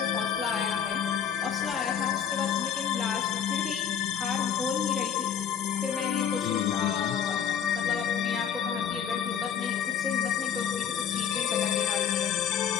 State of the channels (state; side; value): quieter; right; 8.2 dB